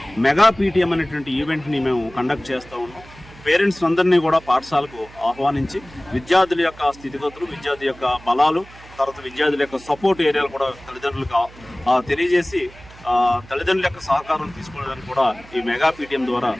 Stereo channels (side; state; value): right; noise; hum, 21 dB below the sound